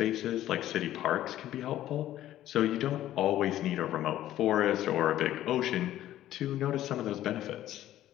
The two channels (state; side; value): quieter; right; 13.2 dB